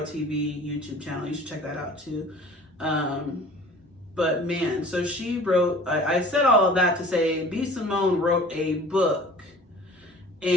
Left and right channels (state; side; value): normal; both; correlation 0.45